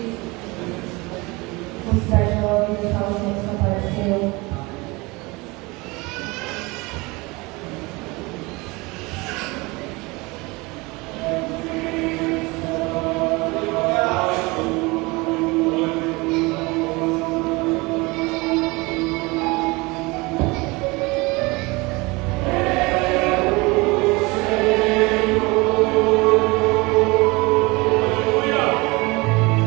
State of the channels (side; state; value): left; quieter; 24.6 dB